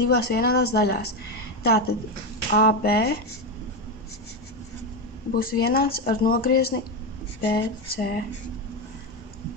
vienādās daļās. Tātad AB būs vienāds ar nogriezni BC.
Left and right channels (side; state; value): both; normal; correlation 0.12